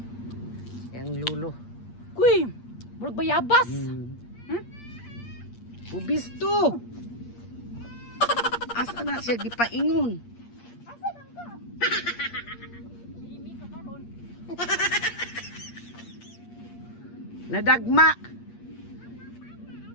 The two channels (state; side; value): late; right; 8.5 ms